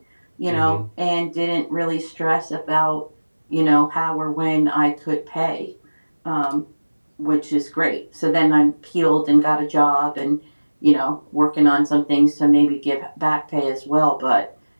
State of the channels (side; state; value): both; inverted; correlation -1.00